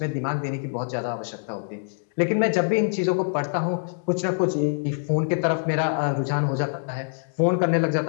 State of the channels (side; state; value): right; silent; 62 dB below the other